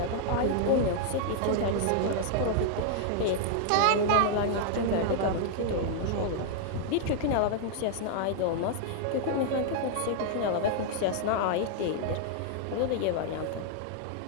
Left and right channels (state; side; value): different; both; correlation -0.01